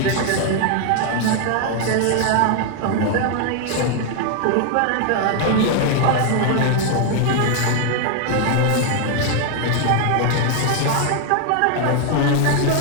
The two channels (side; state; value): both; different; correlation 0.00